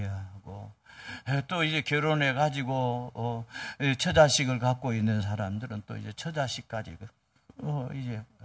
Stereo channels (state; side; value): identical; both; correlation 1.00